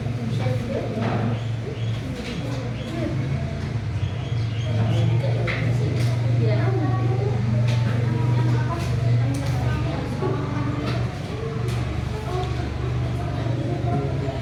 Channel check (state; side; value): identical; both; correlation 1.00